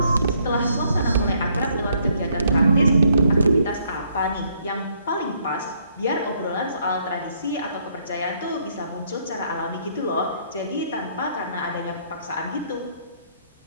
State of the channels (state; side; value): inverted; both; correlation -0.69